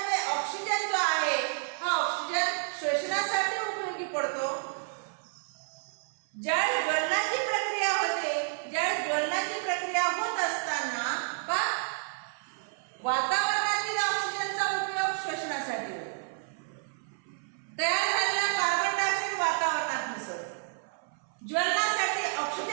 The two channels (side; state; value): left; silent; 57 dB below the other